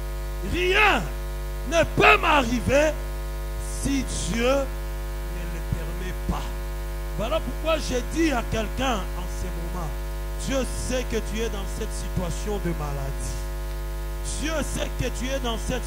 rien ne peut m'arriver si Dieu ne le permet pas. Voilà pourquoi j'ai dit à quelqu'un en ce moment, Dieu sait que tu es dans cette situation de maladie. Dieu sait que tu es dans cette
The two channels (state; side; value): identical; both; correlation 1.00